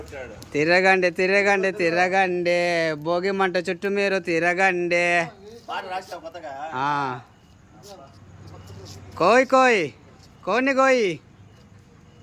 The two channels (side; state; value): both; identical; correlation 1.00